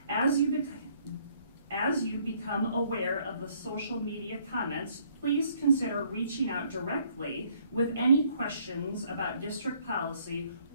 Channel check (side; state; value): both; inverted; correlation -0.64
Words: As you become aware of the social media comments, please consider reaching out directly with any questions about district policy